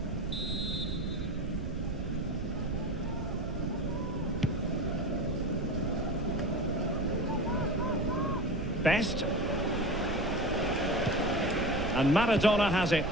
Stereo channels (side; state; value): right; noise; rumble, 5 dB below the sound